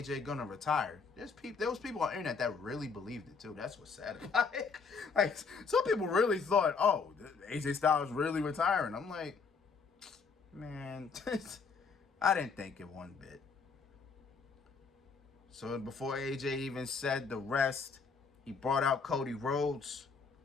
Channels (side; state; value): right; quieter; 5.1 dB